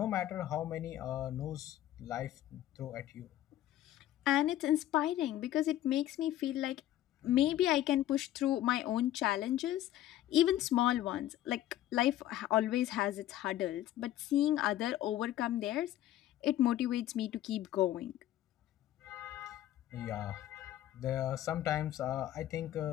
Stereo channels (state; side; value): quieter; right; 13.2 dB